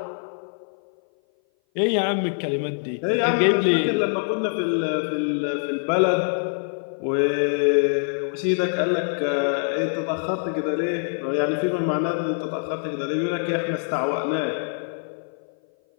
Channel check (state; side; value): silent; right; 57 dB below the other